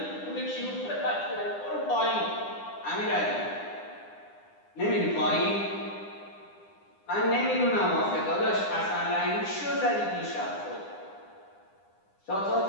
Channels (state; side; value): late; right; 9.9 ms